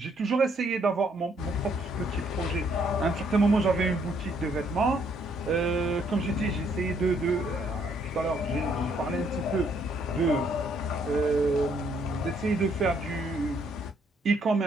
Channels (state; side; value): normal; both; correlation 0.69